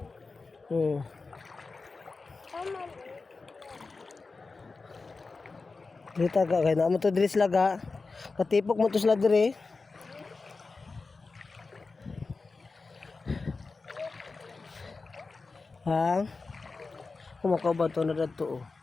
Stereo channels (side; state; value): right; quieter; 4.0 dB